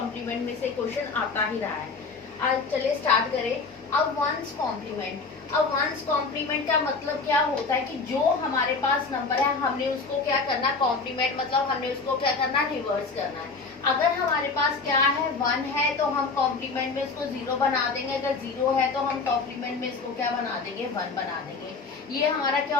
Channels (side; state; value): right; quieter; 4.3 dB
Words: में से क्वेश्चन आता ही रहा है। आज चलिए स्टार्ट करें। अब वंस कॉम्प्लीमेंट का मतलब क्या होता है कि जो हमारे पास नंबर है हमने उसको क्या करना, कॉम्प्लीमेंट मतलब हमने उसको क्या करना, रिवर्स करना है। अगर हमारे पास क्या है, 1 है तो हम कॉम्प्लीमेंट में इसको 0 बना देंगे। अगर 0 है तो हम कॉम्प्लीमेंट में इसको क्या बना देंगे, 1 बना देंगे। ये हमारा क्या